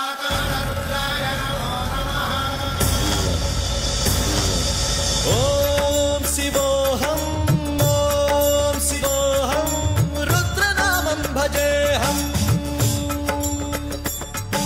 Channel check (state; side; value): identical; both; correlation 1.00